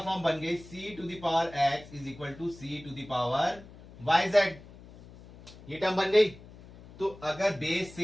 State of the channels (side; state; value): left; noise; hum, 19 dB below the sound